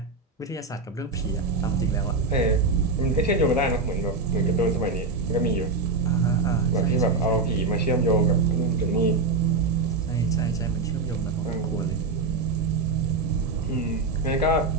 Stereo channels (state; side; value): quieter; left; 3.7 dB